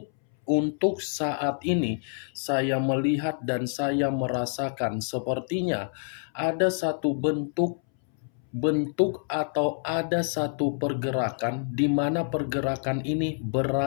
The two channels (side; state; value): right; silent; 60 dB below the other